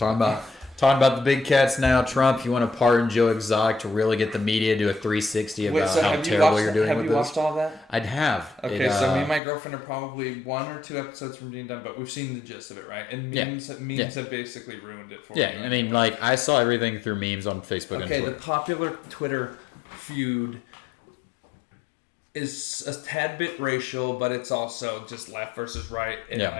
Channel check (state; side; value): drops out; right; at 9.4 s